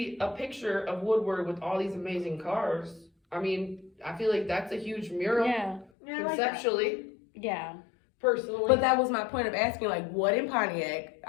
a picture of Woodward with all these amazing cars. I mean, I feel like that's a huge mural Yeah, Yeah, I like that. conceptually, yeah. personally. but that was my point of asking, like, what in Pontiac?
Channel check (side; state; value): right; drops out; at 5.9 s